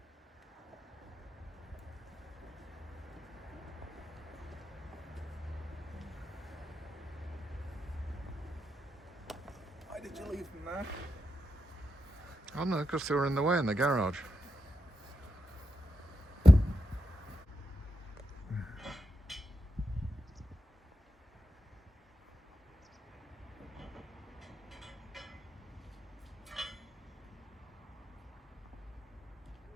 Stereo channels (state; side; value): normal; both; correlation 0.87